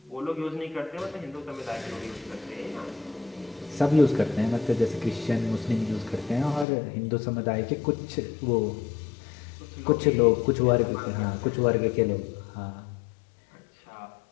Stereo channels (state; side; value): drops out; right; at 6.7 s